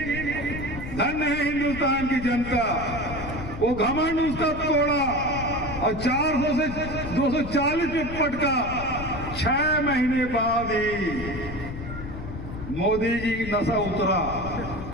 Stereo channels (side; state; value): left; noise; rumble, 9 dB below the sound